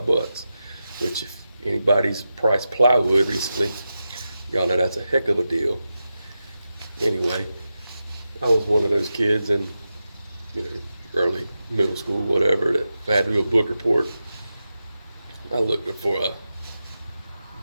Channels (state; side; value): inverted; both; correlation -0.91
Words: bucks, which if anybody's priced plywood recently, y'all know that's a heck of a deal. Anyway, I was one of those kids in, early middle school, whatever, that if I had to do a book report, I looked up for